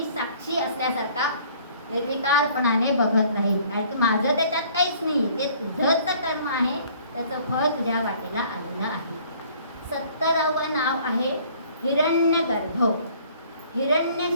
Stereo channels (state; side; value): inverted; both; correlation -0.56